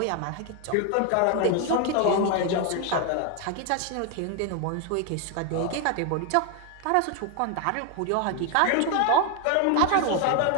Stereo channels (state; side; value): different; both; correlation 0.01